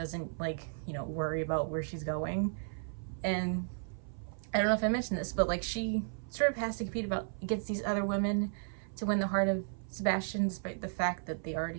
like, you know, worry about where she's going. And I don't know if I mentioned this, but like she sort of has to compete against these other women to win the heart of Sebastian, despite the fact that they already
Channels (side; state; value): left; silent; 55 dB below the other